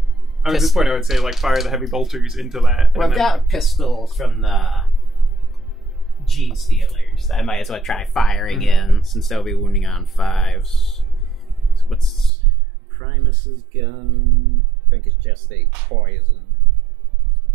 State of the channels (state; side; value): drops out; left; at 12.3 s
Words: At this point, I would say, like, fire the heavy bolters into that. Well, I've got pistols from the Genestealers. I might as well try firing in, since they'll be wounding on 5s. So what's Primus's gun? I think it's just a poison.